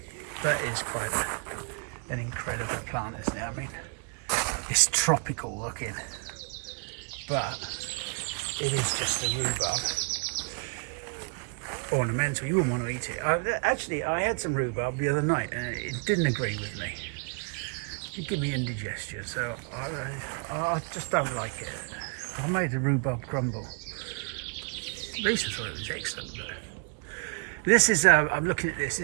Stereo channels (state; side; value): quieter; left; 35.3 dB